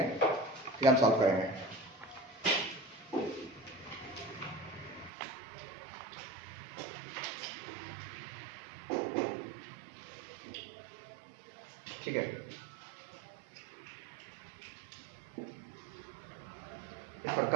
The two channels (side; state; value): left; drops out; at 5.1 s